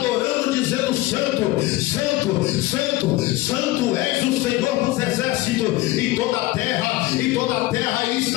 dizendo: Santo, Santo, Santo, Santo és o Senhor dos exércitos, e toda a terra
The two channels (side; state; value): right; quieter; 18.1 dB